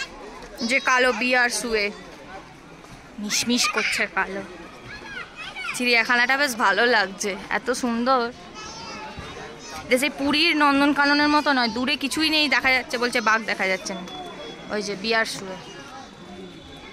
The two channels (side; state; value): both; identical; correlation 1.00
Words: যে কালো বিয়ার শুয়ে মিশমিশ করছে কালো। চিড়িয়াখানাটা বেশ ভালো লাগছে, এত সুন্দর। সেই পুরীর নন্দনকাননের মতো নয়, দূরে কিছুই নেই দেখা যাচ্ছে, বলছে বাঘ দেখা যাচ্ছে না। ওই যে বিয়ার শুয়ে।